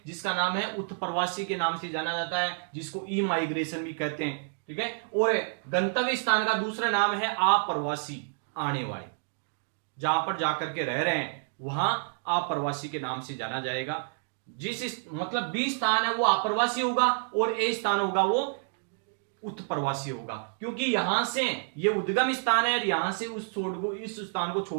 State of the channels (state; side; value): silent; left; digital silence